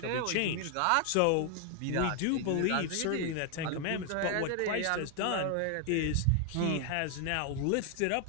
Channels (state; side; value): different; both; correlation 0.00